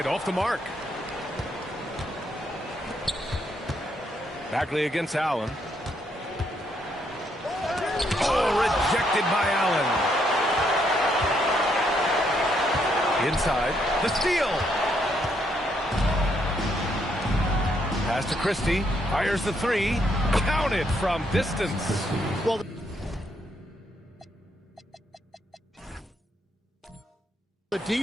off the mark. Bagley against Allen. Oh, rejected by Allen. Inside, the steal. Pass to Christie. Fires the 3. Counted from distance. Well, the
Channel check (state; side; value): normal; both; correlation 0.74